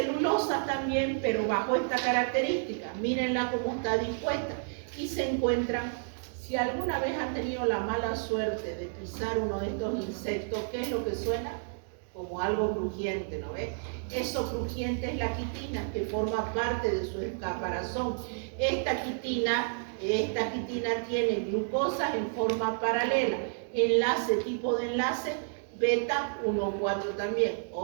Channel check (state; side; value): silent; left; digital silence